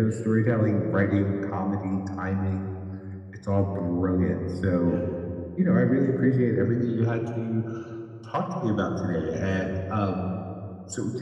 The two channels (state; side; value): identical; both; correlation 1.00